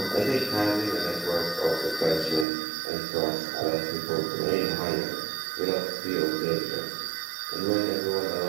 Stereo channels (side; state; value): left; drops out; at 2.5 s